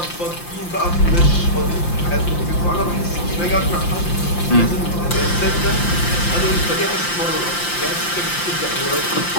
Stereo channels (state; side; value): late; right; 5.8 ms